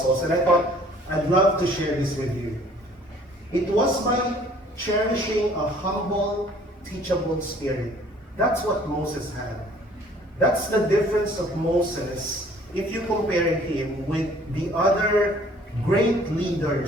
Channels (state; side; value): normal; both; correlation 0.55